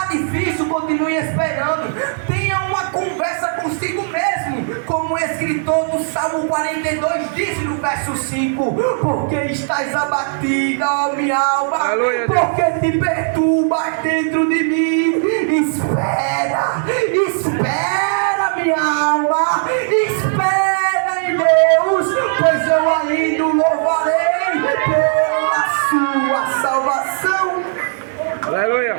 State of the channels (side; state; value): left; silent; digital silence